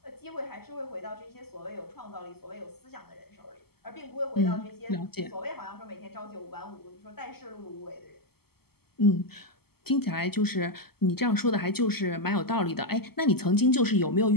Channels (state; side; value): late; right; 0.96 ms